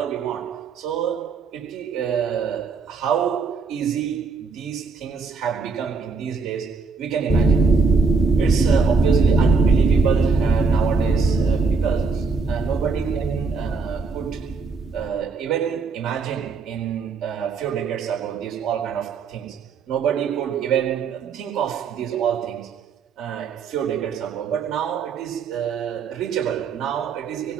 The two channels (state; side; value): quieter; left; 4.8 dB